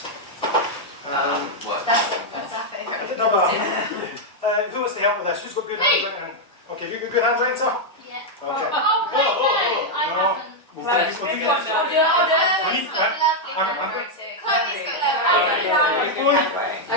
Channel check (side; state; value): both; normal; correlation -0.01